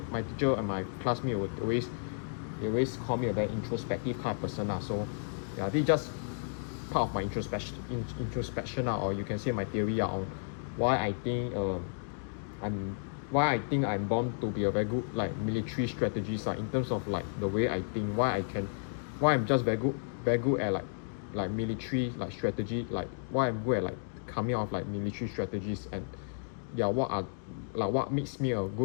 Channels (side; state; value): right; silent; digital silence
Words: my teacher and my classmate would always call me a very introspective kind of person. So yeah, this is just part of my introspection or you can say my theory on why I think I'm I'm born to be a very good like military strategist in terms of like the way I think, why I'm just very good at like military like strategy, like why I'm good at like coming out of like military strategies, and yeah, what makes me a